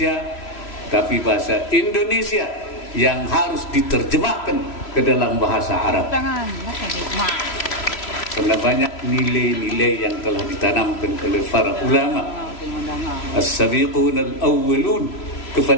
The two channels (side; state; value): right; late; 3.0 ms